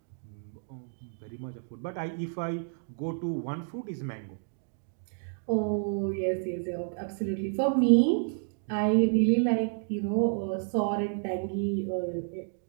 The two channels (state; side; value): silent; left; digital silence